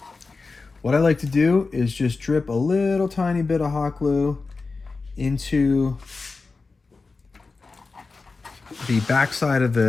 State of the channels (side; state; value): right; quieter; 4.1 dB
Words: What I like to do is just drip a little tiny bit of hot glue into the backside of